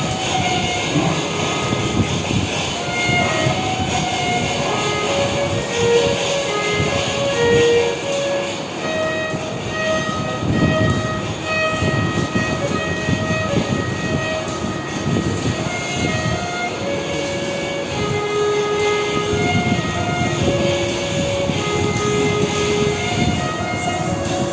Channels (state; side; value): identical; both; correlation 1.00